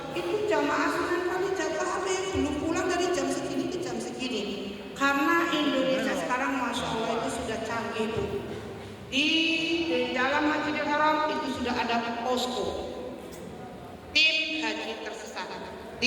itu jamaah Sunan Kalijaga ada yang belum pulang dari jam segini ke jam segini. Karena Indonesia sekarang Masya Allah itu sudah canggih Bu. Di dalam Masjidil Haram itu sudah ada posko tim haji tersesat.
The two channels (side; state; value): both; identical; correlation 1.00